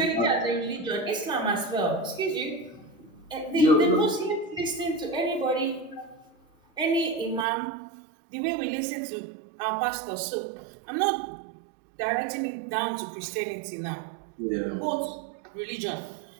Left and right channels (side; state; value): left; drops out; at 7.5 s